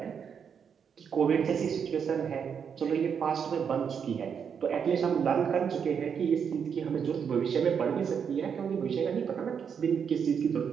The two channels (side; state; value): left; quieter; 7.1 dB